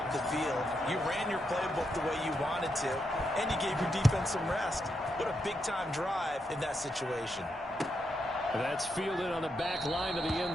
the field. You ran your playbook the way you wanted to, and you gave your defense some rest. What a big-time drive in that situation. That's fielded on the back line of the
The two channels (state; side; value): normal; both; correlation 0.82